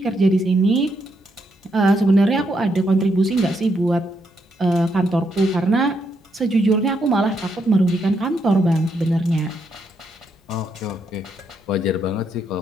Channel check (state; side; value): normal; both; correlation 0.78